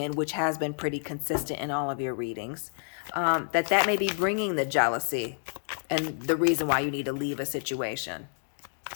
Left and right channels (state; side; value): silent; right; digital silence